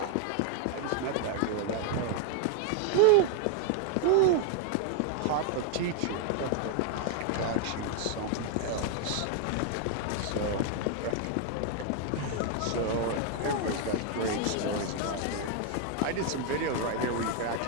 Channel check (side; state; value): both; different; correlation 0.00